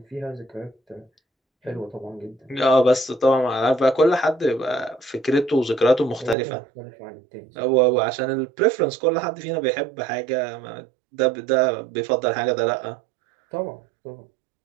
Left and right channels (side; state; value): left; drops out; at 6.4 s